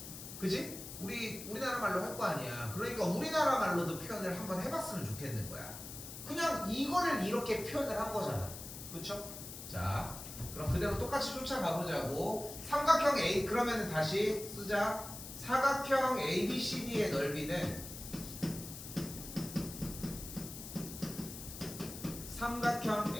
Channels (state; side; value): noise; left; hiss, 11 dB below the sound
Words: 그지? 우리나라 말로 할 거 아니야. 그러니까 우리나라 말로도 표현을 한번 해봤으면 좋겠는 거야. 그냥 이거를 이렇게 표현을 한 거잖아. 그쵸? 자, 그럼 그대로 똑같이 쫓아가 보자고. 삼각형 A, 그러면 다시 쓰자. 사각형 ABCD의 넓이는 삼각형